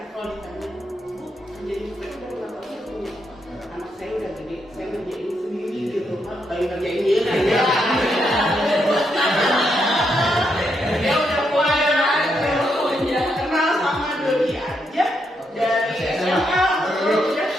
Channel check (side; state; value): both; normal; correlation 0.79